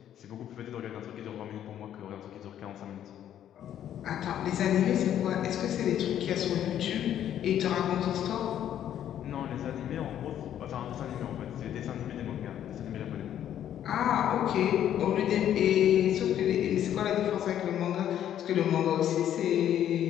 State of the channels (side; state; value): right; quieter; 10.6 dB